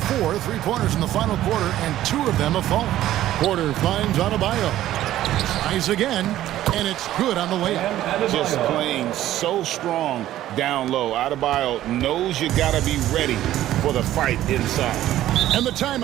4 3-pointers in the final quarter, and 2 of them have fallen. Porter finds Adebayo. Tries again, and it's good on the layup. Just playing so strong down low. Adebayo knows you got to be ready for the fight inside. And the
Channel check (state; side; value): quieter; left; 13.5 dB